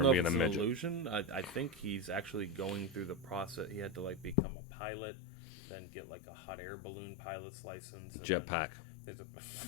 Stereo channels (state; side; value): drops out; right; at 4.4 s